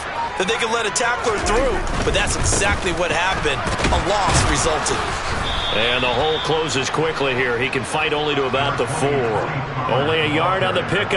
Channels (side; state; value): both; identical; correlation 1.00